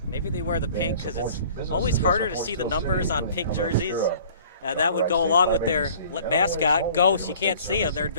Maybe they wear the pink because it's always harder to see the numbers on pink jerseys. That would go along with their mascot, Ghost. You can't see them. They're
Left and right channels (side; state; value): both; inverted; correlation -0.49